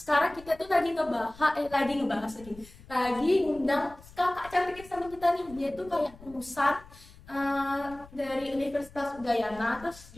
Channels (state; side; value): noise; left; rumble, 21 dB below the sound